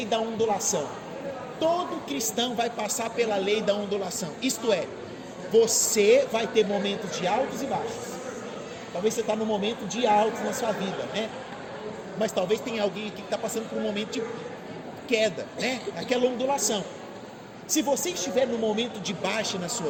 da ondulação. Todo cristão vai passar pela lei da ondulação. Isto é, você vai ter momentos de altos e baixos. Talvez você está num momento de altos na sua vida, né? Mas talvez tenha alguém aqui que está passando por um momento de queda, né? Aquela ondulação. Se você estiver no momento de baixa na sua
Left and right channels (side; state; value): both; identical; correlation 1.00